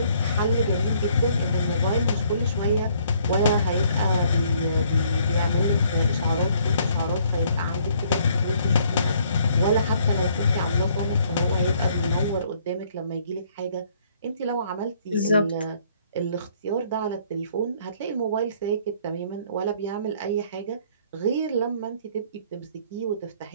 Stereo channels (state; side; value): inverted; both; correlation -0.63